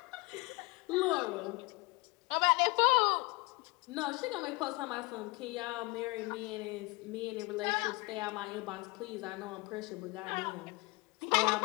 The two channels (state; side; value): quieter; right; 25.5 dB